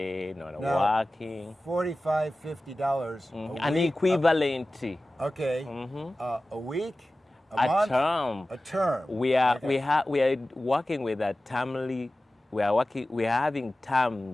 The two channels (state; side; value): normal; both; correlation 0.96